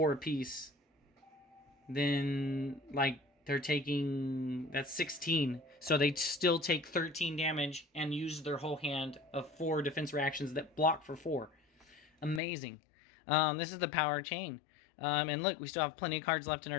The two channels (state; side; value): drops out; right; at 12.4 s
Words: apiece. Then, like, they're taking... That's 16. So they still take 13 damage and use their whole hand of 4 defense reactions that block for 4. Amazing. This is the power of Chane. And look, we still have plenty of cards left in